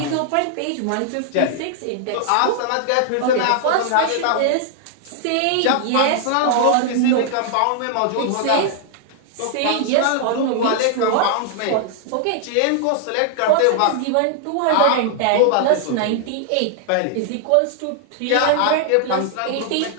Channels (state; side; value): different; both; correlation 0.00